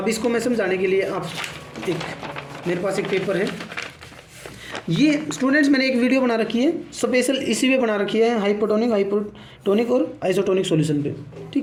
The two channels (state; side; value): identical; both; correlation 1.00